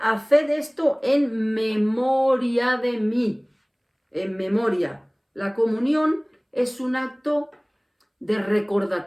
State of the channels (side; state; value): both; identical; correlation 1.00